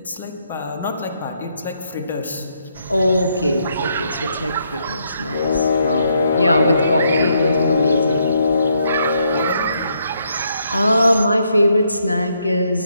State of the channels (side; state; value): both; inverted; correlation -0.75